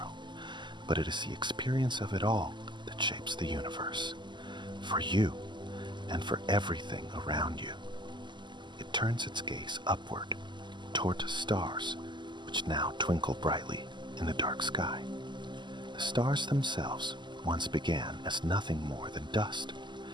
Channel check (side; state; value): left; late; 0.22 ms